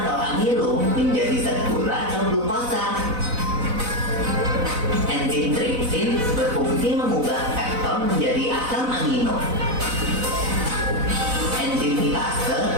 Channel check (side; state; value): left; late; 4.0 ms